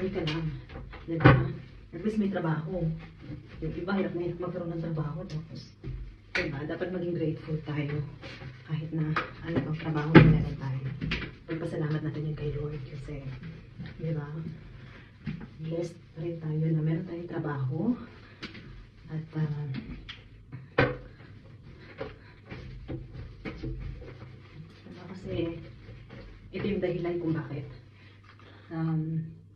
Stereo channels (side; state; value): both; identical; correlation 1.00